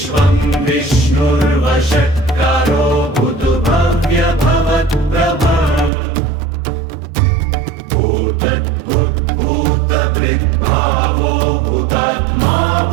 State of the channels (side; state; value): left; drops out; at 5.9 s